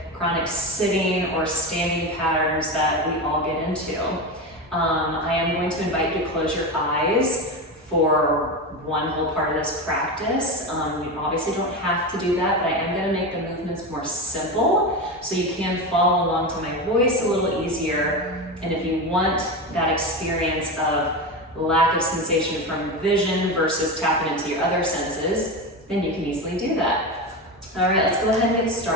chronic sitting or standing patterns that we all get into. I am going to invite you to close your eyes for one whole part of this practice. You obviously don't have to do that, but I am going to make the movements more simple so you can follow along to my voice a little easier. And if you want that experience of lack of sensation from vision versus tapping into your other senses, then you can easily do that. All right, let's go ahead and get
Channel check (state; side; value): normal; both; correlation 0.20